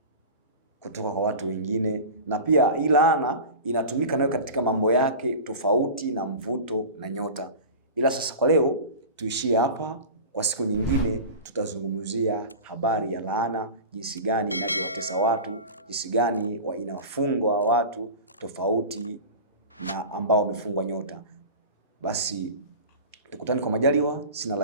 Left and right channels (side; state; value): both; inverted; correlation -0.32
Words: kutoka kwa watu wengine, na pia hii laana inatumika nayo katika mambo yake tofauti na mvuto na nyota. Ila sasa kwa leo tuishie hapa. Kwa siku nyingine tutazungumzia habari ya laana, jinsi gani inavyowatesa watu, jinsi gani inawafungwa watu tofauti na ambao wamefungwa nyota. Basi tukutane kwa majaliwa, sina